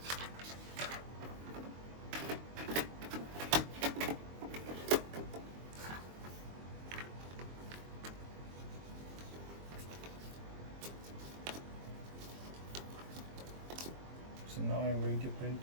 So now I'm going to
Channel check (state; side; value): late; left; 22 ms